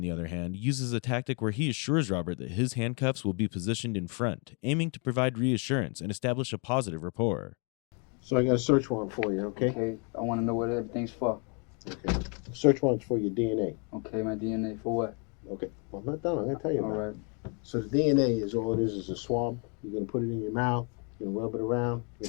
the other hand, uses a tactic where he assures Robert that his handcuffs will be positioned in front, aiming to provide reassurance and establish a positive rapport. So I got a search warrant for you, okay? Okay, I want to know what everything's for. Okay. Search warrant's for your DNA. Okay, my DNA for what? Okay. Well, I'm not done. I'm going to tell you All about right. it. So the DNA is all it is a swab. You're going to put it in your mouth. You're going to rub it around. You're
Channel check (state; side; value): quieter; right; 36.2 dB